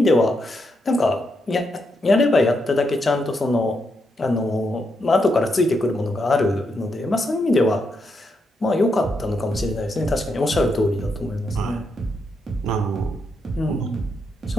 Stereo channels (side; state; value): both; normal; correlation 0.81